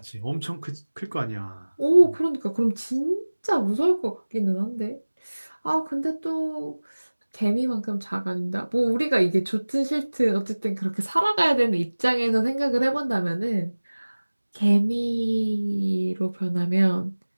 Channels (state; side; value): inverted; both; correlation -1.00